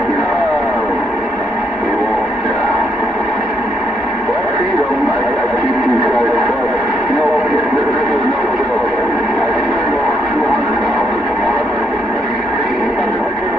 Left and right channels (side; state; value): both; normal; correlation 0.74